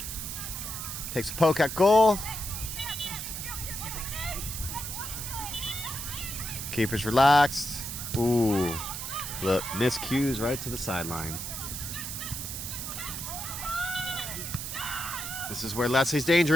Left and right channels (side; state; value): right; noise; hiss, 6 dB below the sound